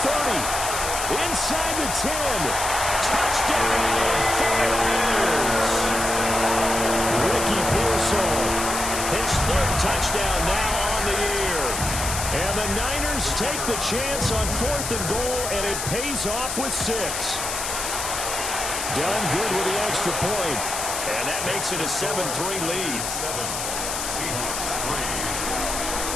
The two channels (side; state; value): left; noise; hiss, 3 dB below the sound